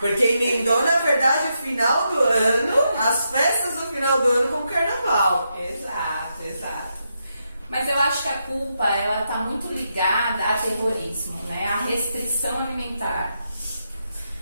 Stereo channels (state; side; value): inverted; both; correlation -0.83